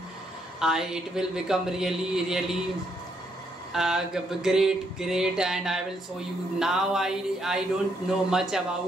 it will become really great, and I will show you. Now I don't know much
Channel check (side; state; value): both; normal; correlation 0.74